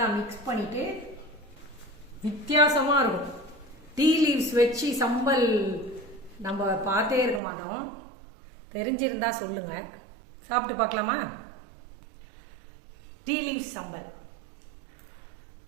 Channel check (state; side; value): drops out; left; at 7.4 s